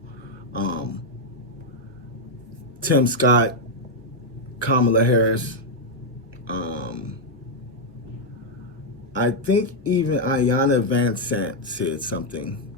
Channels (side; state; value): both; normal; correlation -0.01